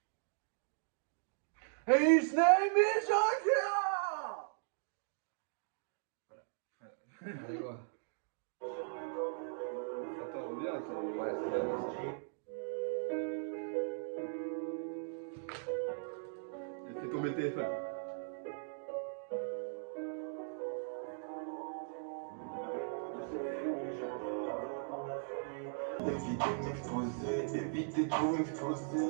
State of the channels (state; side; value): silent; left; digital silence